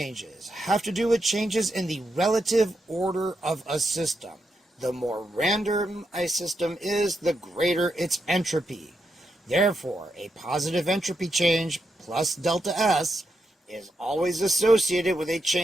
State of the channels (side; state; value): both; normal; correlation 0.84